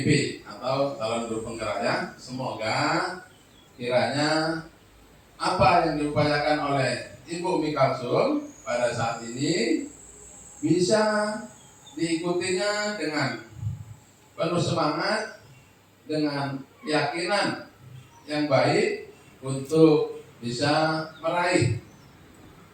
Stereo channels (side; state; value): both; identical; correlation 1.00